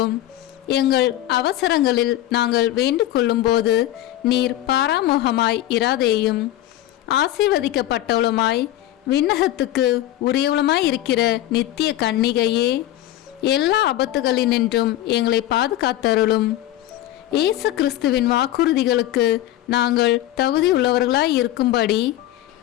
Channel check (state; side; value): quieter; right; 14.0 dB